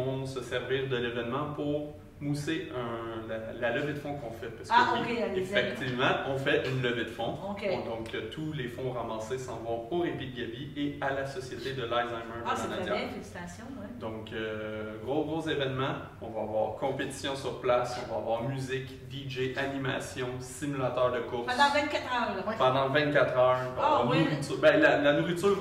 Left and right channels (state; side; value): identical; both; correlation 1.00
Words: se servir de l'événement pour mousser la levée de fonds qu'on fait. Parce que effectivement, on fait une levée de fonds. Okay. Donc, tous les fonds ramassés s'en vont au Répit de Gaby et à la Société de l'Alzheimer de c'est Lanaudière. très bien, félicitations. Ouais. Donc, gros événement. On va avoir compétition sur place, on va avoir musique, DJ, animation, simulateur de course. Pendant 24 heures. Là. Pendant 24 heures. Nourriture. Ben, la nourriture